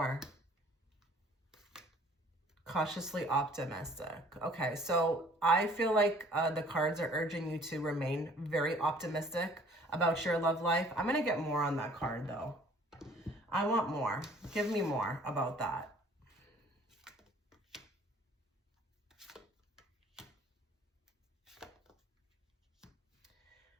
Cautiously optimistic. Okay, so I feel like the cards are urging you to remain very optimistic about your love life. I'm going to get more on that card, though. I want more. Give me more about that.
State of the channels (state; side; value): normal; both; correlation 0.55